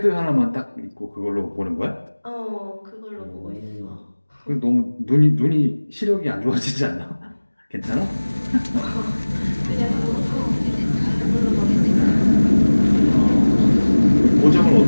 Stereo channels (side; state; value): both; inverted; correlation -1.00